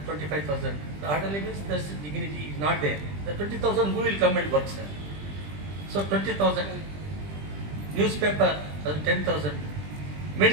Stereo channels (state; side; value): late; left; 20 ms